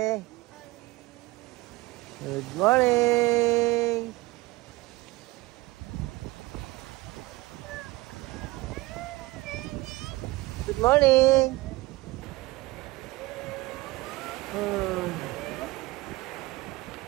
Good morning. Good morning.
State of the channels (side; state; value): left; quieter; 21.0 dB